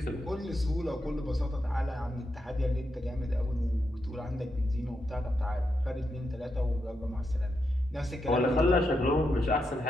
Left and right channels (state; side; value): normal; both; correlation 0.84